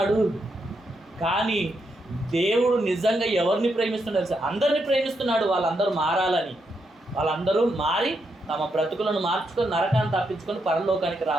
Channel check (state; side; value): normal; both; correlation 0.81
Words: కానీ దేవుడు నిజంగా ఎవరిని ప్రేమిస్తున్నాడు? అందరిని ప్రేమిస్తున్నాడు. వాళ్ళందరూ మారాలని, వాళ్ళందరూ మారి తమ బ్రతుకులను మార్చుకొని నరకాన్ని తప్పించుకొని పరలోకానికి